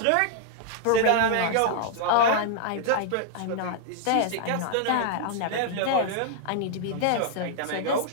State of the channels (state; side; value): different; both; correlation -0.01